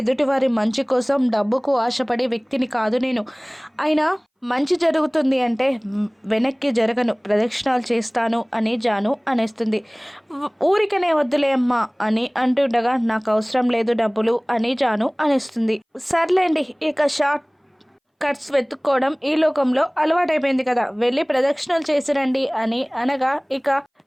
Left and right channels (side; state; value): both; identical; correlation 1.00